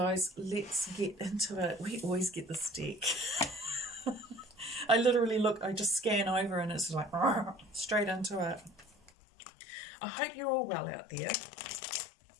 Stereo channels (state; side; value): drops out; right; at 9.1 s